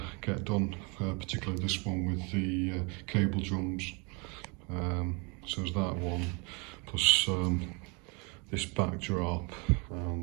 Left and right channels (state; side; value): quieter; left; 31.4 dB